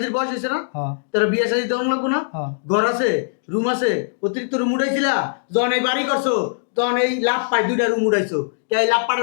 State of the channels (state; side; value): silent; right; digital silence